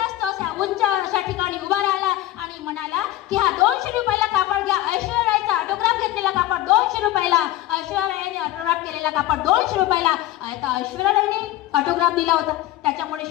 तो अशा उंच अशा ठिकाणी उभा राहिला आणि म्हणाला की हा 200 रुपयाला कापड घ्या. ऐश्वर्या रायचा ऑटोग्राफ घेतलेला कापड 200 रुपयाला, ऐश्वर्या रायने ऑटोग्राफ केलेला कापड 200 रुपयाला. आता ऐश्वर्या रायने ऑटोग्राफ दिला होता, त्याच्यामुळे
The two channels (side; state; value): right; quieter; 15.4 dB